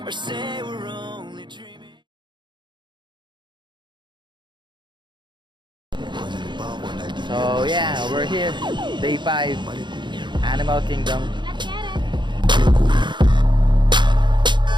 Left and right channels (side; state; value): left; late; 0.22 ms